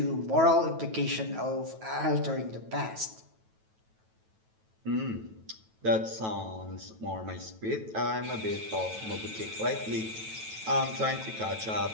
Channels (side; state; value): left; late; 9.2 ms